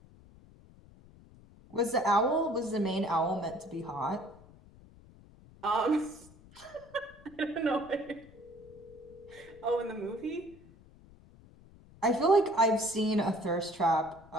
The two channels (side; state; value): left; noise; rumble, 23 dB below the sound